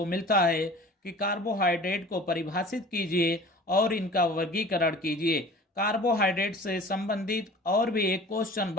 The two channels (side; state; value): both; normal; correlation 0.43